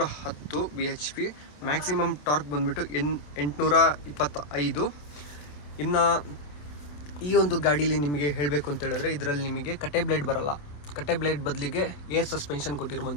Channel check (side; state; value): right; late; 27 ms